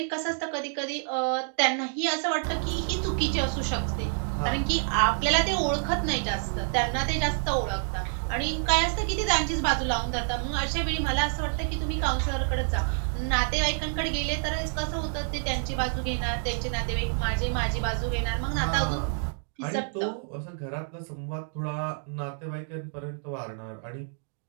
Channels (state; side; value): silent; left; 59 dB below the other